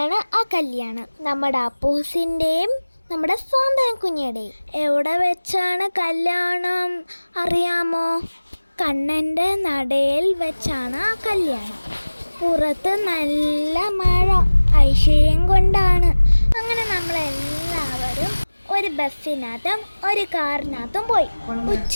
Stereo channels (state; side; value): inverted; both; correlation -1.00